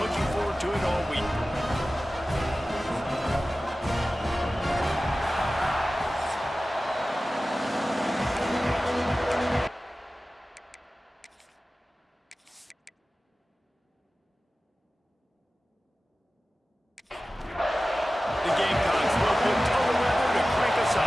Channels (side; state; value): both; normal; correlation 0.96